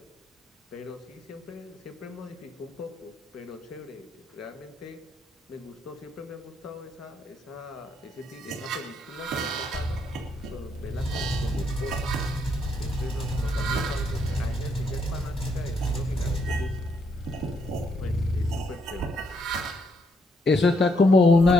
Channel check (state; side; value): normal; both; correlation 0.75